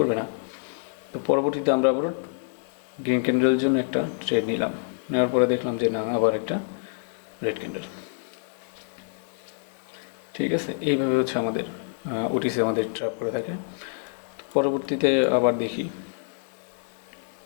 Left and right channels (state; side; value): silent; right; 60 dB below the other